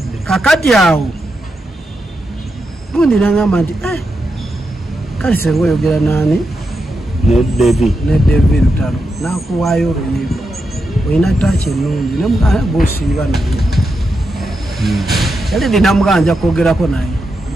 kakati awo gundi nangamba nti kale senga oyogera nani ne David Lutalo nakuwaayo oluyimba olina ttaaki ennungi bosiiba naye yaledi namugamba nja kwogerako naye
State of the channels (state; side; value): normal; both; correlation 0.86